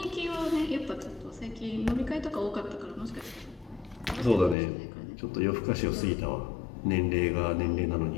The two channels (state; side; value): drops out; right; at 4.5 s